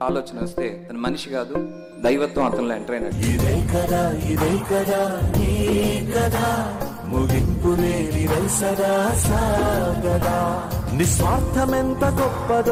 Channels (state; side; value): identical; both; correlation 1.00